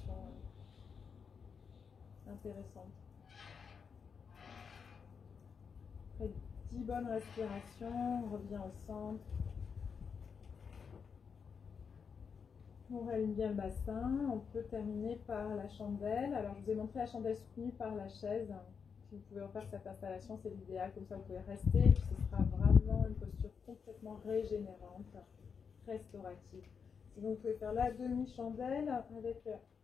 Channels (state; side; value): quieter; right; 6.2 dB